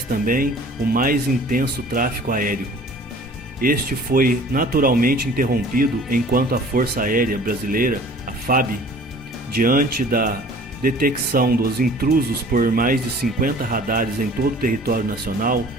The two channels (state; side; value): normal; both; correlation 0.48